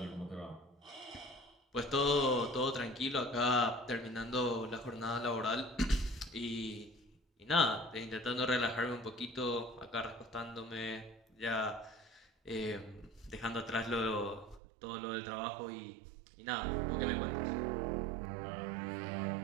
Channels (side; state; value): left; drops out; at 14.6 s